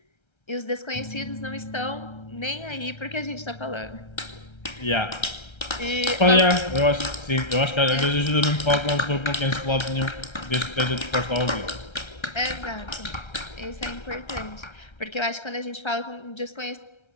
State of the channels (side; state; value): right; late; 1.3 ms